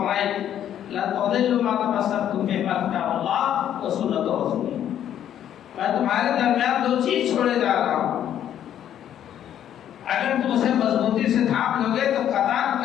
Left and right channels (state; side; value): quieter; right; 10.5 dB